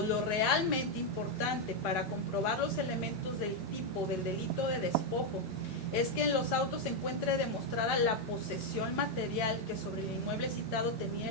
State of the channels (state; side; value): normal; both; correlation 0.02